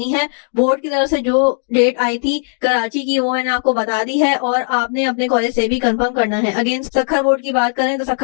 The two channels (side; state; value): right; silent; 65 dB below the other